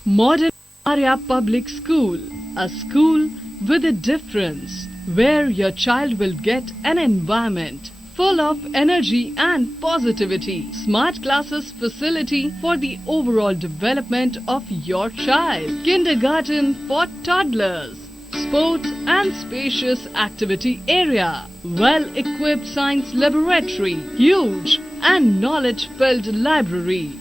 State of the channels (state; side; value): normal; both; correlation 0.97